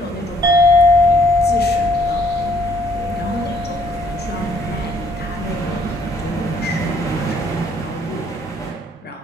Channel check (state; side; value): normal; both; correlation 0.64